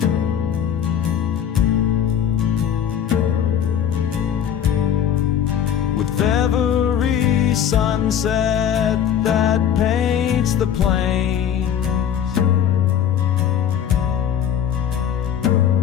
With every sunset that paints the plains,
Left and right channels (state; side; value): quieter; right; 9.1 dB